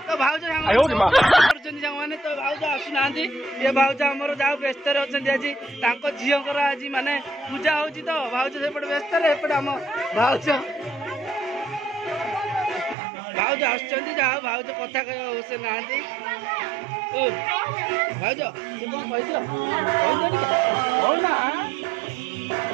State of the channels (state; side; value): drops out; left; at 13.0 s